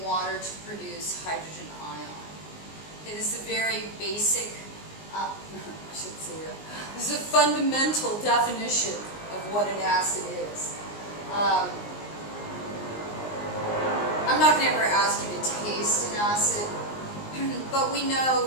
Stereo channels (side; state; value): right; late; 19 ms